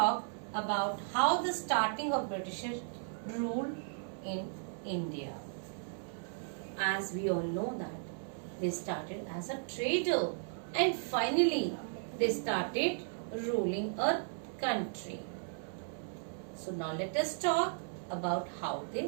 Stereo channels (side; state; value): left; silent; 54 dB below the other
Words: about how the starting of British rule in India. As we all know that they started as a trader and finally they started ruling a country. So now let us talk about how